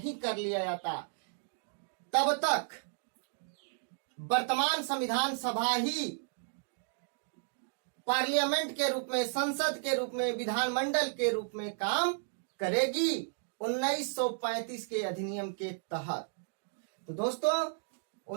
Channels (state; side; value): silent; left; digital silence